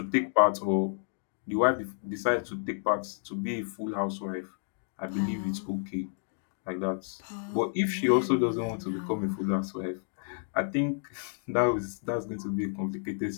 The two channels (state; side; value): silent; right; digital silence